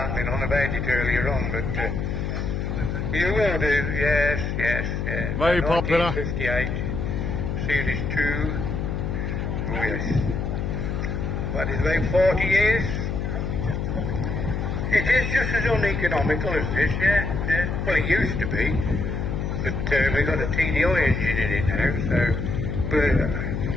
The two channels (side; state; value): left; noise; hum, 2 dB below the sound